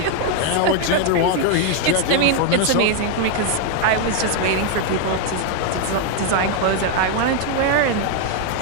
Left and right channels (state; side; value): different; both; correlation 0.00